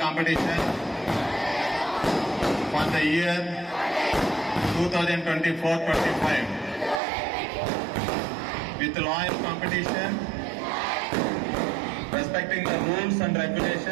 for the year 2024-25 with loyal competition, respecting the rules and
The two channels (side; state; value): left; drops out; at 7.0 s